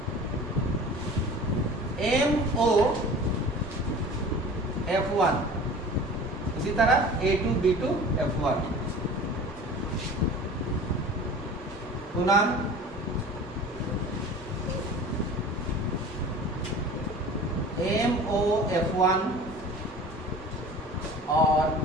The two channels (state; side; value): normal; both; correlation 0.41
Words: MO F1, इसी तरह A2 B2 F1 पुनः MO F1 और